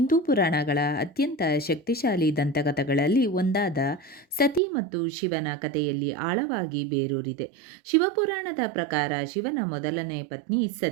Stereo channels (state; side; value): drops out; left; at 4.6 s